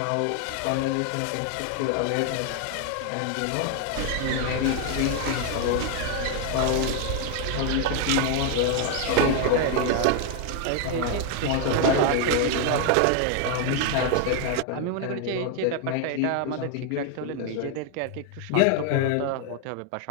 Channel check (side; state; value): both; different; correlation 0.00